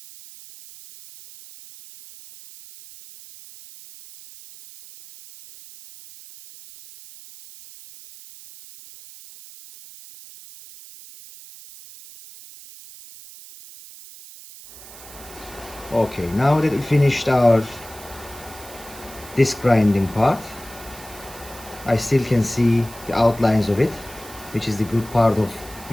Okay, now that we finished our disc grinding part, I still can see the outlines of it, which is the good part of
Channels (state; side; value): noise; right; hiss, 18 dB below the sound